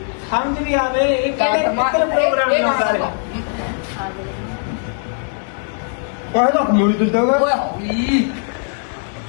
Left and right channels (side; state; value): right; silent; 66 dB below the other